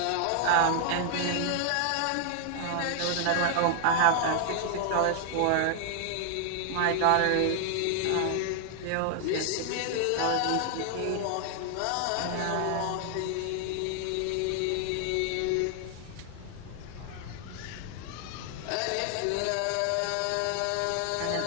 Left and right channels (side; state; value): both; different; correlation 0.00